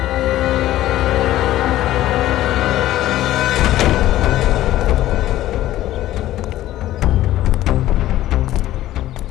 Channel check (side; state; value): right; quieter; 14.4 dB